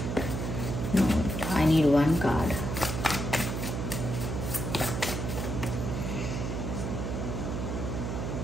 No, I need one card.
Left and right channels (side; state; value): right; noise; hum, 3 dB below the sound